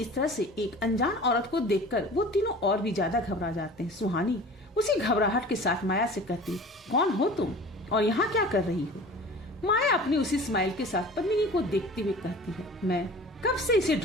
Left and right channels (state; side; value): normal; both; correlation 0.41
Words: तरह से एक अनजान औरत को देखकर वो तीनों और भी ज्यादा घबरा जाते हैं। सुहानी उसी घबराहट के साथ माया से कहती, कौन हो तुम और यहाँ क्या कर रही हो? माया अपनी उसी स्माइल के साथ पद्मिनी को देखते हुए कहती है, मैं कब से इसे